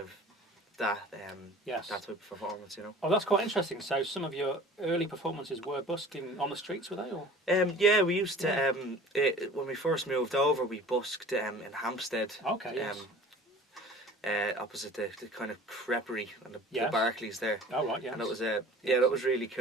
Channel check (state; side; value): normal; both; correlation 0.44